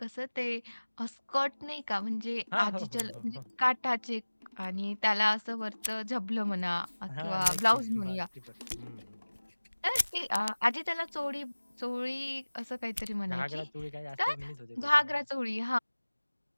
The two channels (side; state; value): both; inverted; correlation -1.00